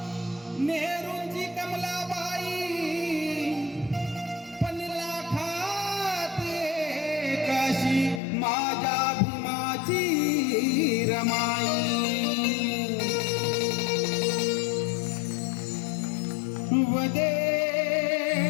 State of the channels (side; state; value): right; drops out; at 8.2 s